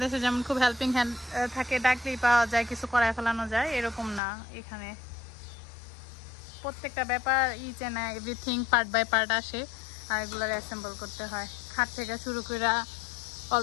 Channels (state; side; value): drops out; right; at 4.2 s